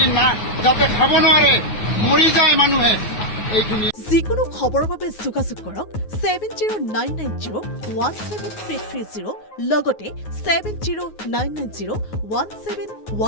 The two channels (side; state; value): right; late; 9.3 ms